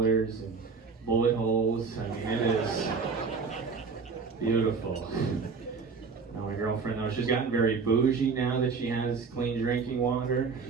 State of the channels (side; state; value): left; quieter; 5.0 dB